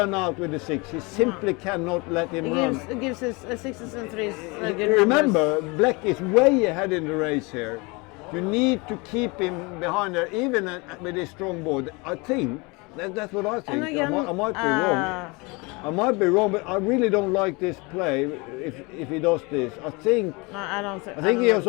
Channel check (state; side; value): quieter; right; 27.2 dB